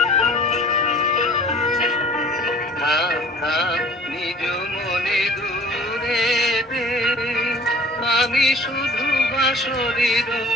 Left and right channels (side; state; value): both; normal; correlation 0.48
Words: থাক থাক নিজ মনে দূরে দে আমি শুধু বাঁশরীর